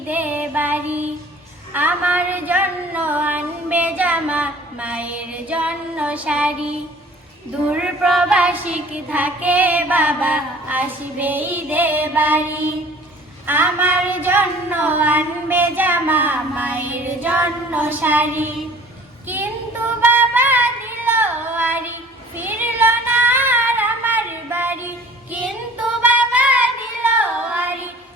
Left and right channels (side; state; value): both; normal; correlation 0.48